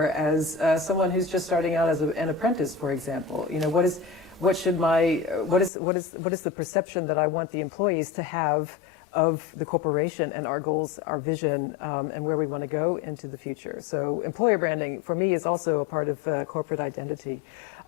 as someone who's just starting out as an apprentice, for example? What is the perception that I want the employees to have of the corporation and our goals, our vision, and where we want to go into the future? So employer branding, for me, is also a part of corporate identity.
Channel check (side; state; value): right; drops out; at 5.7 s